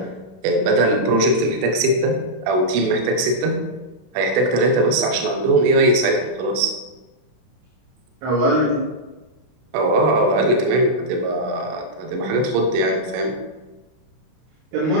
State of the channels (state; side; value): late; left; 32 ms